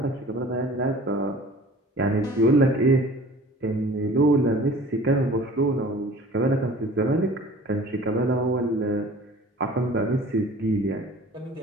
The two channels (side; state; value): both; normal; correlation 0.46